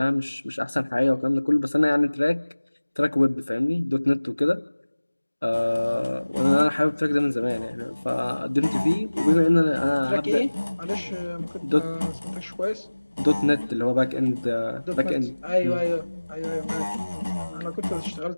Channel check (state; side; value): inverted; both; correlation -1.00